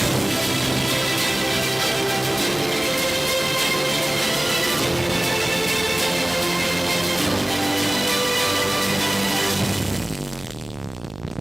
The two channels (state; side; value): noise; right; hum, 20 dB below the sound